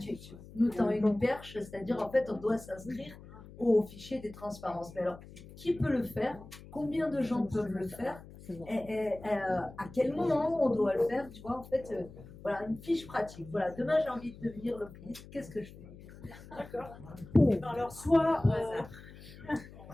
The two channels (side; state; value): left; noise; hum, 18 dB below the sound